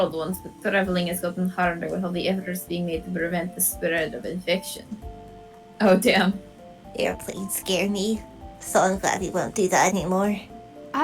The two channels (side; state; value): both; identical; correlation 1.00